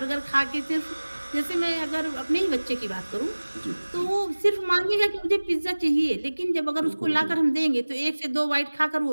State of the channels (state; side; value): inverted; both; correlation -1.00